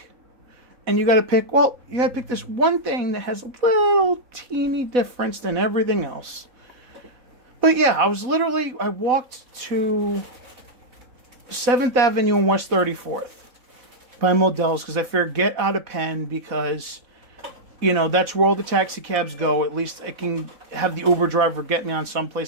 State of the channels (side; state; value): left; late; 4.0 ms